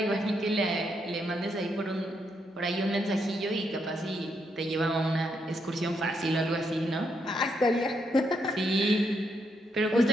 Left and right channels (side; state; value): both; normal; correlation 0.78